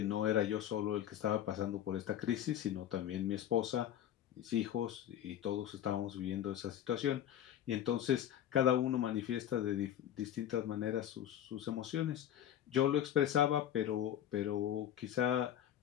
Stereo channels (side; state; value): right; quieter; 10.8 dB